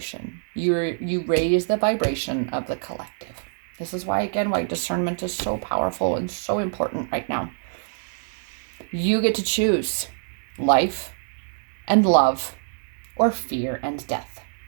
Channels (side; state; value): left; silent; digital silence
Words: you raise the vibration of the collective. This is why, again, why discernment is so powerful and so important right now. You get to choose life and love, or fear and death.